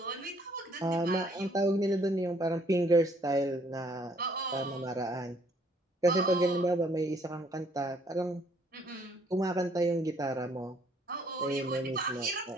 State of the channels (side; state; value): both; normal; correlation 0.64